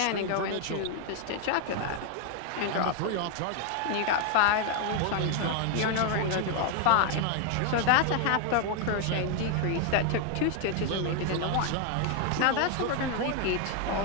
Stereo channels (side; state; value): both; different; correlation 0.01